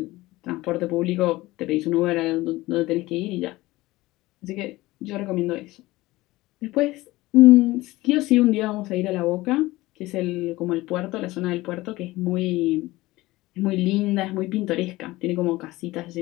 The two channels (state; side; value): quieter; right; 19.0 dB